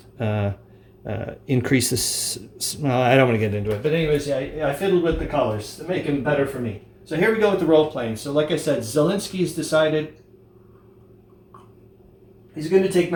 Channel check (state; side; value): identical; both; correlation 1.00